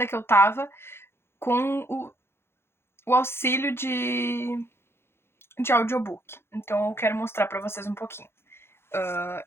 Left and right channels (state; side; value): late; right; 0.12 ms